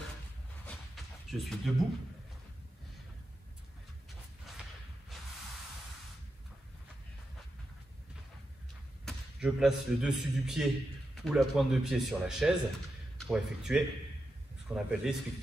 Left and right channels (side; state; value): both; normal; correlation 0.88